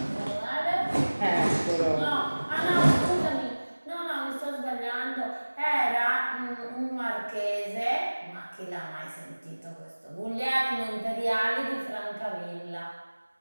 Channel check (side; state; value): both; inverted; correlation -1.00